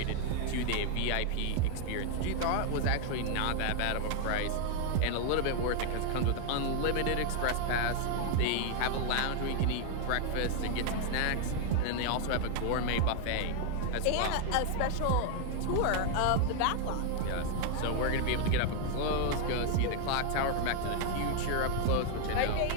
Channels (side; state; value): both; different; correlation 0.00